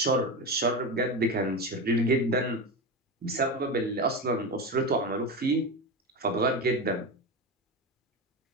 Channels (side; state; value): both; normal; correlation 0.20